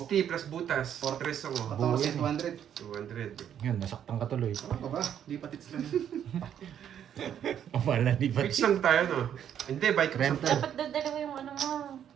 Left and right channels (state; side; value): quieter; left; 9.5 dB